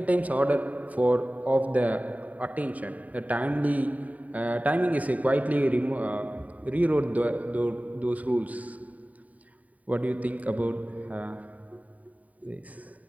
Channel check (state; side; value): late; left; 0.071 ms